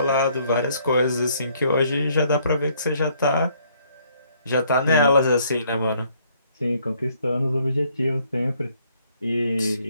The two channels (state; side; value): inverted; both; correlation -0.66